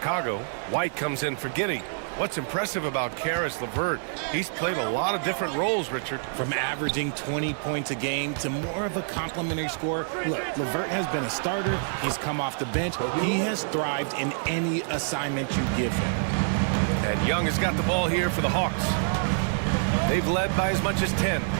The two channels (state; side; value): silent; left; digital silence